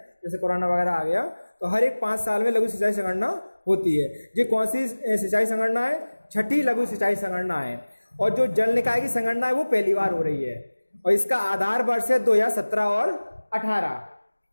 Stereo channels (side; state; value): both; inverted; correlation -1.00